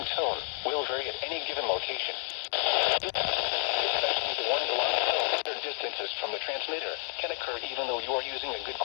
tone will vary at any given location. Especially the warning alarm tone, their distances from the transmitter can occur even though you are using a good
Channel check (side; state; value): right; silent; 58 dB below the other